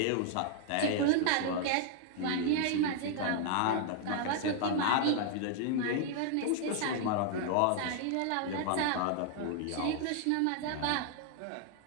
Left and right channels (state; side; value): different; both; correlation 0.00